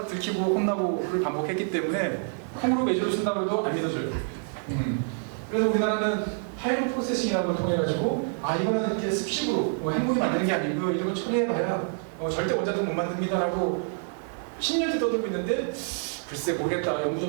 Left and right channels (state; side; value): silent; left; 60 dB below the other